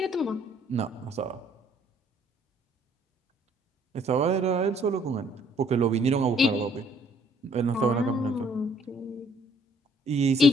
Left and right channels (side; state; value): both; normal; correlation 0.62